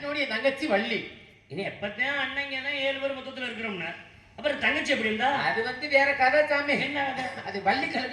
என் தங்கச்சி வள்ளி. இன்னும் எப்பத்தான் அண்ணங்கன்னா 7 பேர் மொத்தத்துல இருக்கிறோம்னா அப்புறம் தங்கச்சி எப்படி இருந்தா? அது வந்து வேற கதை சாமி. என்ன கதை? அது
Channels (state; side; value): identical; both; correlation 1.00